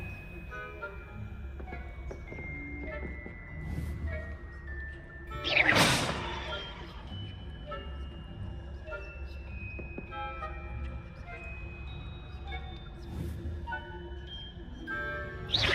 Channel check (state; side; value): identical; both; correlation 1.00